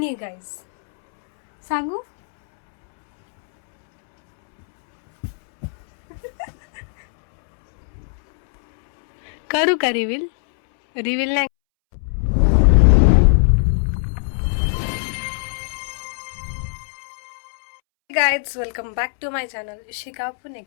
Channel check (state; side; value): silent; right; 66 dB below the other